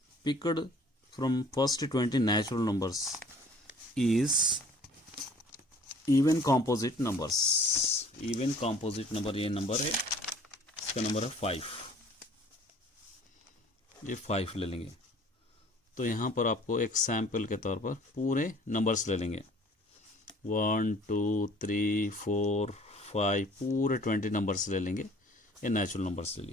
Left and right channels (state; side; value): normal; both; correlation 0.52